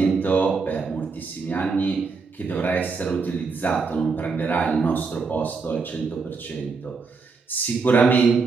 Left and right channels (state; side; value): quieter; left; 4.6 dB